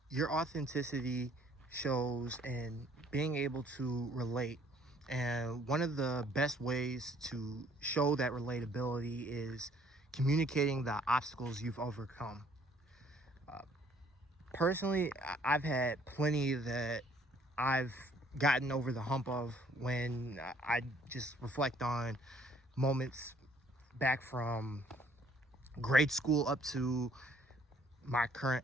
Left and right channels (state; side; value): normal; both; correlation 0.61